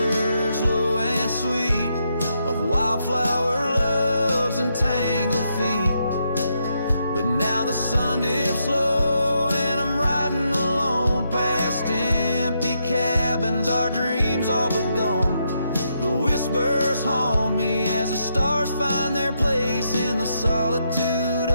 low and sweet of wildflower loves and tangled feet. But now the sun dips low and I'm riding alone past empty cabins, our dreams all but gone. The whispers haunt me as the stars find their place in the solitude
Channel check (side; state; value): both; inverted; correlation -0.80